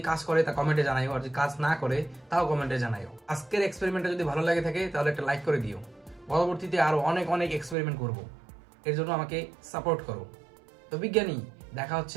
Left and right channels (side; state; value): left; drops out; at 7.8 s